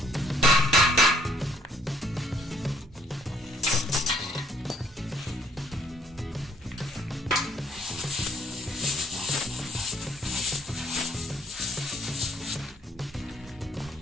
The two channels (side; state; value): both; normal; correlation 0.64